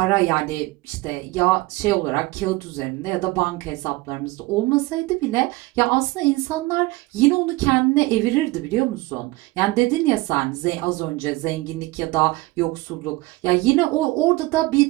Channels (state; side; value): quieter; left; 21.3 dB